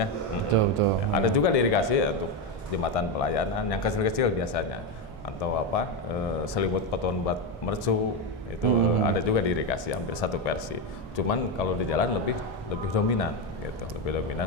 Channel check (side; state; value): both; normal; correlation 0.10